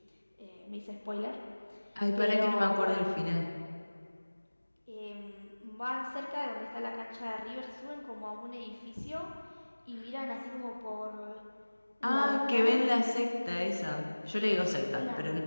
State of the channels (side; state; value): both; inverted; correlation -1.00